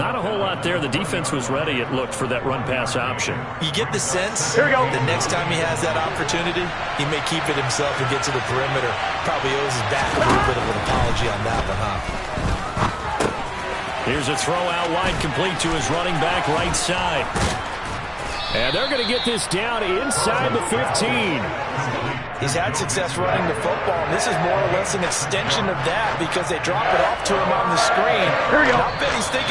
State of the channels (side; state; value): both; identical; correlation 1.00